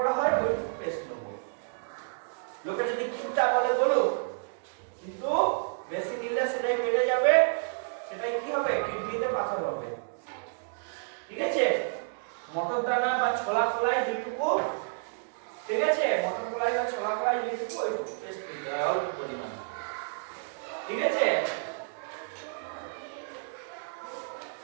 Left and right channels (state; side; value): silent; left; digital silence